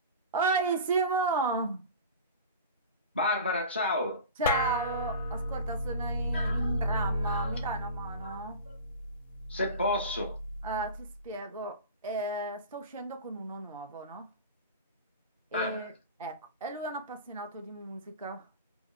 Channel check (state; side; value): inverted; both; correlation -0.33